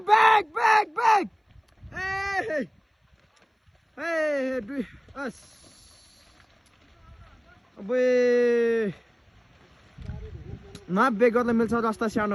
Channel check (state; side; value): identical; both; correlation 1.00